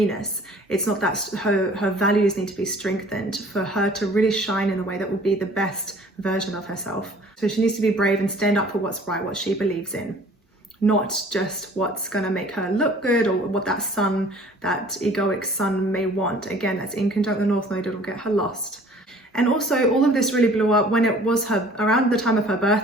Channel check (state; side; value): normal; both; correlation 0.51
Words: It's not that her values need to be strengthened for her to really shine in the way that will be the best version of herself. So she needs to be brave and stand up for what's right, what she believes in, not just what's going to make her look good, or what that sun, that egoic sun may want. Again, that's in conjunct the North Node, it'll get her lost. And also, all of this really blew up when it was around the time of her